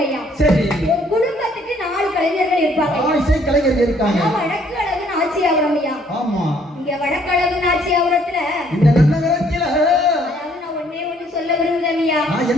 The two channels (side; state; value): both; normal; correlation 0.64